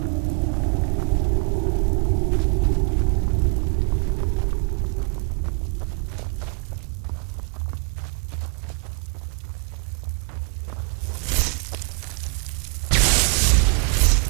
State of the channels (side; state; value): left; quieter; 36.4 dB